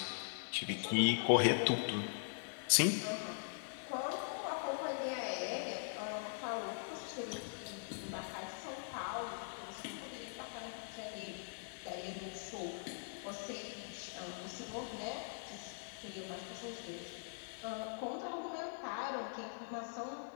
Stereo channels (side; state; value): right; silent; digital silence